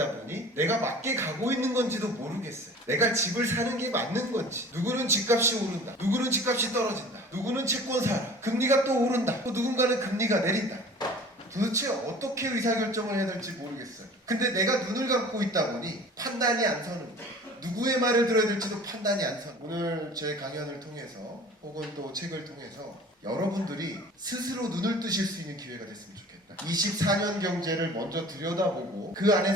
보니 내가 맞게 가고 있는 건지도 모르겠어요. 내가 집을 사는 게 맞는 건지. 누구는 집값이 오른다. 누구는 집값이 떨어진다. 누구는 채권 사라. 금리가 또 오른다. 또 누군가는 금리가 내린다. 도대체 어떻게 의사결정을 해야 될지 모르겠어요. 근데 내가 눈을 감고 있다 보니 판단이 안 서는 거예요. 누구의 말을 들어야 될지도 판단이 안 서는 거예요. 오늘 제 강연을 통해서 혹은 또 책을 통해서 여러분들이 스스로 눈을 뜨실 수 있는 기회가 됐으면 좋겠다. 24년 경제를 먼저 들여다보고 그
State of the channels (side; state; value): both; normal; correlation 0.44